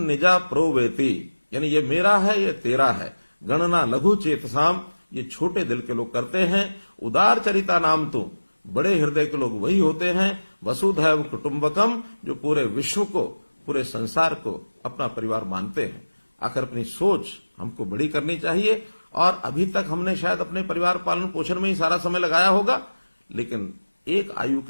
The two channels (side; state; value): both; inverted; correlation -1.00